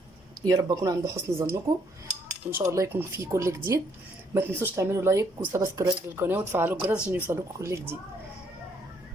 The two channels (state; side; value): normal; both; correlation 0.68